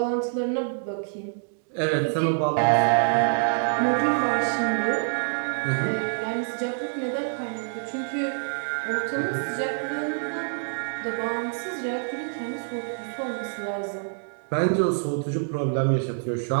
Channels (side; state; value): left; silent; digital silence